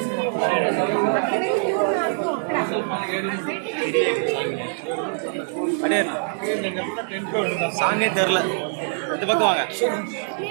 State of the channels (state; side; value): silent; left; 63 dB below the other